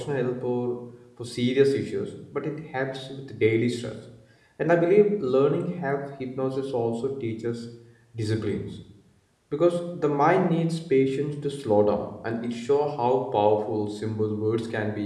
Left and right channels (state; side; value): identical; both; correlation 1.00